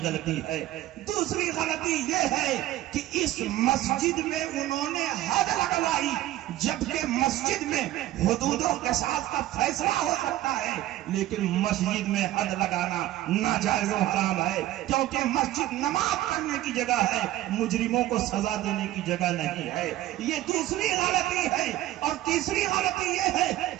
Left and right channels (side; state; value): left; quieter; 14.8 dB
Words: غلطی ہے. دوسری غلطی یہ ہے کہ اس مسجد میں انہوں نے حد لگوائی، جبکہ مسجد میں حدودوں کے ساتھ کا فیصلہ ہو سکتا ہے لیکن مسجد میں حد لگانا ناجائز و حرام ہے، کیونکہ مسجد نماز پڑھنے کی جگہ ہے، مجرموں کو سزا دینے کی جگہ نہیں ہے. یہ دوسری غلطی ہے. اور تیسری غلطی یہ ہے